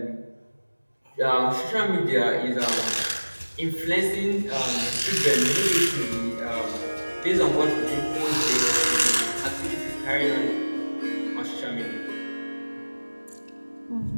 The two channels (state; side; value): inverted; both; correlation -1.00